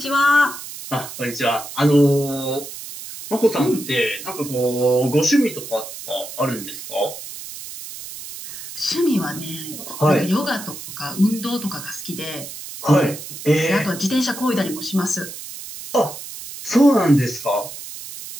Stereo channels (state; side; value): noise; right; hiss, 11 dB below the sound